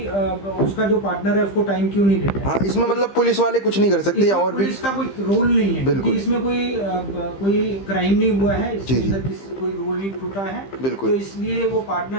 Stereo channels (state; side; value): late; right; 15 ms